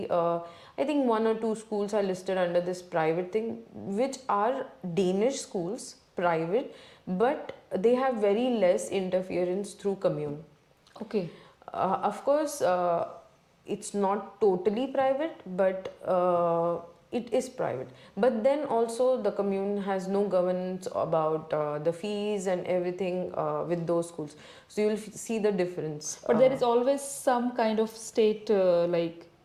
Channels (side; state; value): both; identical; correlation 1.00